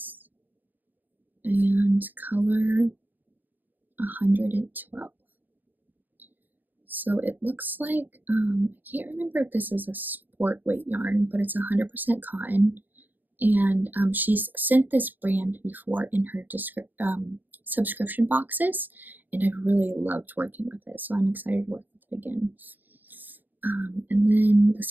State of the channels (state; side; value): late; left; 0.087 ms